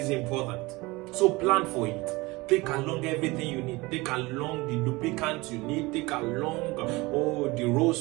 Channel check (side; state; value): left; quieter; 22.6 dB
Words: important. So plan for it. Take along everything you need. Take along the lubricant you need. Take along the